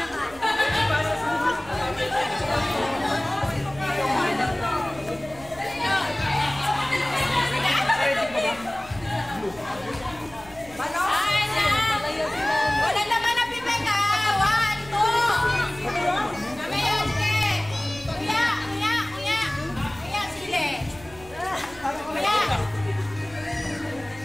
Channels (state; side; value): noise; right; hum, 22 dB below the sound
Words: Wala naman na pipek ha. 1, 2. Mamaya, sige. Kuya, sili. Kuya.